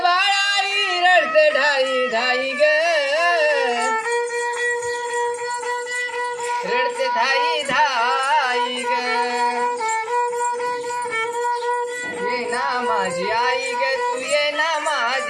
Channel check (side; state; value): both; identical; correlation 1.00